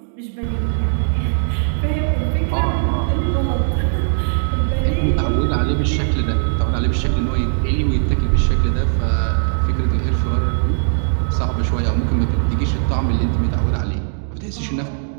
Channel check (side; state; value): left; silent; digital silence